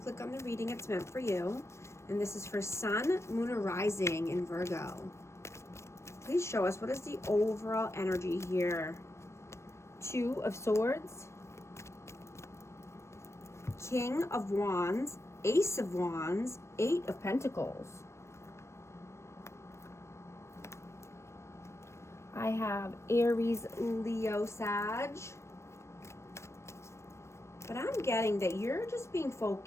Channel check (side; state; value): right; late; 0.13 ms